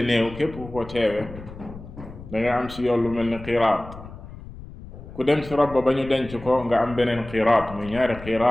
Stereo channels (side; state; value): left; noise; rumble, 15 dB below the sound